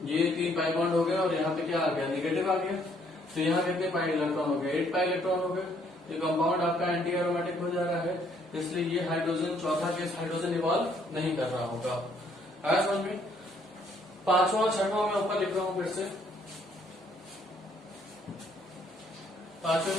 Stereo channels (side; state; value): both; normal; correlation 0.66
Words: ये 3 पाई बॉन्ड हो गया और यहाँ पे क्या आ गया, नेगेटिव आ गया, तो यहाँ कितने पाई इलेक्ट्रॉन हो गए, 8 पाई इलेक्ट्रॉन हो गए, तो कंपाउंड आपका एंटी एरोमेटिक हो जा रहा है, इसलिए ये हाइड्रोजन चौथा केस हाइड्रोजन इवॉल्व नहीं कर रहा होगा। आया समझ में। 5वां 6वां मैं ऊपर लिख रहा हूं फिर से, 5वें